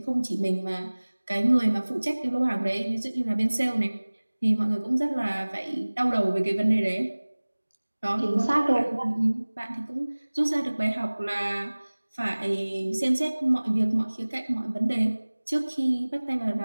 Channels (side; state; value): both; inverted; correlation -1.00